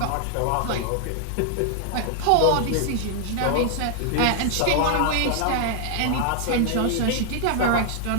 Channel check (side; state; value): both; different; correlation 0.00